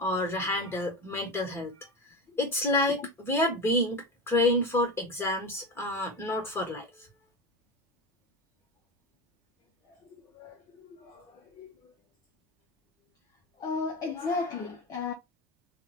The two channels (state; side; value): normal; both; correlation 0.22